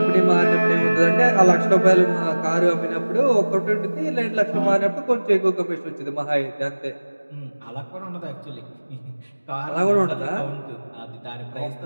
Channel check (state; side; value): inverted; both; correlation -1.00